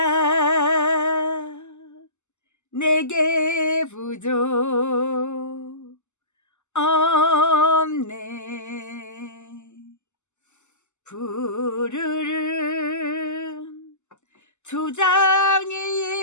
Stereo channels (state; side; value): late; right; 0.83 ms